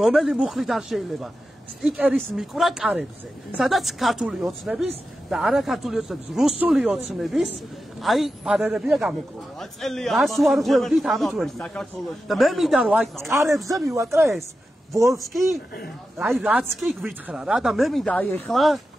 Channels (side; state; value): both; normal; correlation 0.91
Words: რომელი მუხლით არ შეიძლება სტიკერის მიკვრა კარებზე სადაც ქართული ოცნების და არა ქართული ოცნების რუსული ოცნების აი ბანერებია გამოკრული რას ვარღვევდით ამით ვერ და მე მინდა რომ აი კარებზე მივაკრა ეს ვოლსკი აი რაც კი გვითხრა რა და მე მინდა აი ეხლა